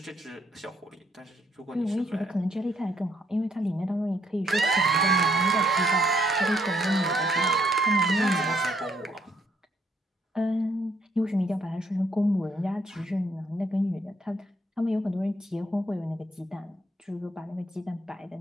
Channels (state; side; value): normal; both; correlation 0.70